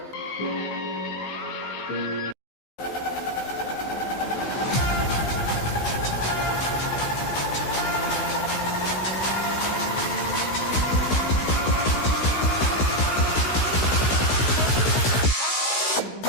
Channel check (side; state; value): right; late; 16 ms